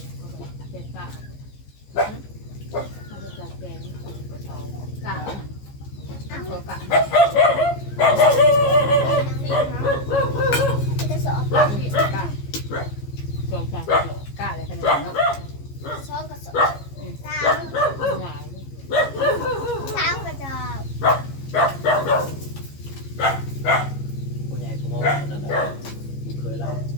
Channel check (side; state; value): right; late; 15 ms